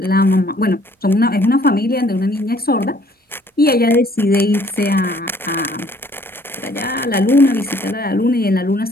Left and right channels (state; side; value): normal; both; correlation 0.60